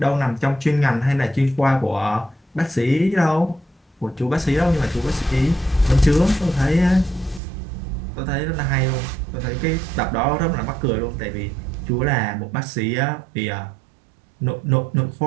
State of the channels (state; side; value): drops out; left; at 7.4 s